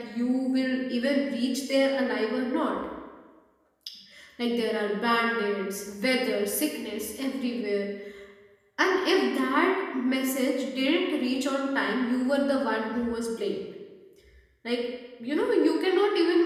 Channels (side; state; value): both; identical; correlation 1.00